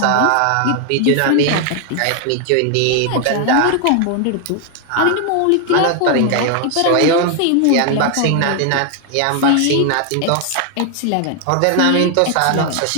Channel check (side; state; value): both; different; correlation 0.00